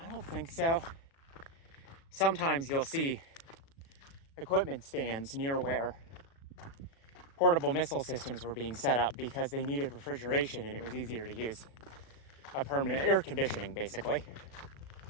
don't think so. Sometimes you'll see equipment stands near where portable missile systems were being set up because they needed refrigeration and it was easier to use a permanent air conditioning, basically.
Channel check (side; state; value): right; late; 36 ms